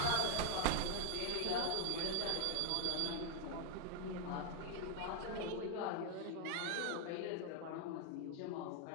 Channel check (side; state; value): both; different; correlation 0.00